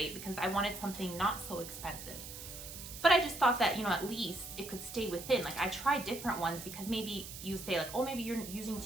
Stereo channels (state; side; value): noise; right; hiss, 11 dB below the sound